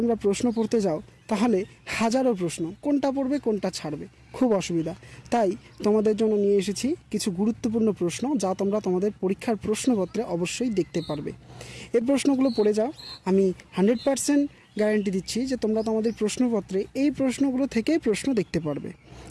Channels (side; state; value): both; identical; correlation 1.00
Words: প্রশ্ন পড়তে যাও তাহলে হাজারো প্রশ্ন, কোনটা পড়বে কোনটা ছাড়বে, খুব অসুবিধা। তাই তোমাদের জন্য নিয়ে এসেছি কিছু গুরুত্বপূর্ণ প্রশ্ন, যা তোমরা তোমাদের পরীক্ষার প্রশ্নপত্রে অবশ্যই দেখতে পারবে। এই প্রশ্নগুলো পড়ে যাও, আমি 100% গ্যারান্টি দিচ্ছি যে তোমরা তোমাদের প্রশ্নপত্রে এই প্রশ্নগুলো থেকেই প্রশ্ন দেখতে পারবে।